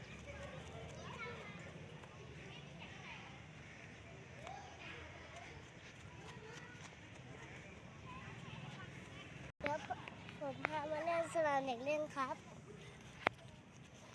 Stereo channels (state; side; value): identical; both; correlation 1.00